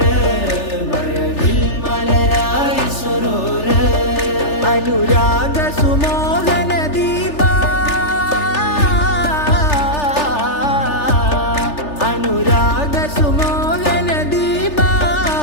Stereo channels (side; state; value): right; late; 3.4 ms